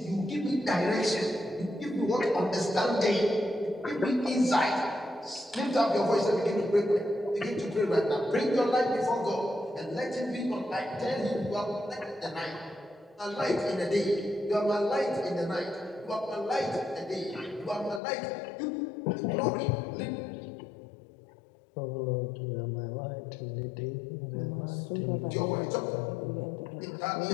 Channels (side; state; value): right; drops out; at 18.0 s